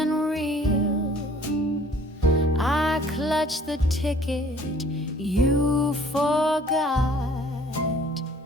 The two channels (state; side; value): normal; both; correlation 0.55